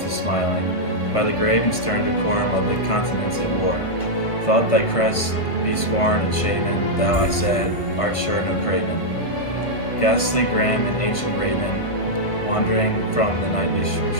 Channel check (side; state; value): right; late; 1.5 ms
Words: smiling, by the grave and stern decorum of the continents it wore, thought thy crest be scorned and shaven, thou, I said, art sure no craven. Ghastly grim and ancient raven, wandering from the nightly